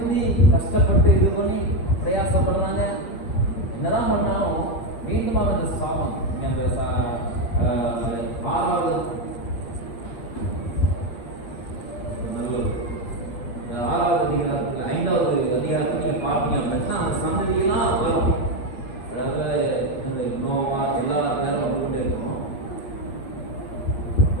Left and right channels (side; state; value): right; late; 8.6 ms